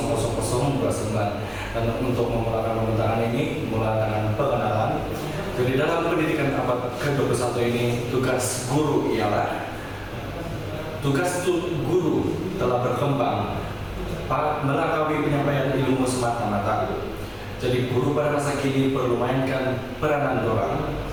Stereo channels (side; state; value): both; identical; correlation 1.00